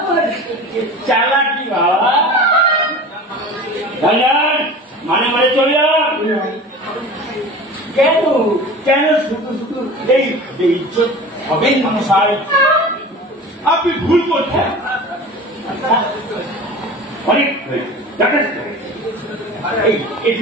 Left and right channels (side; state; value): both; normal; correlation 0.37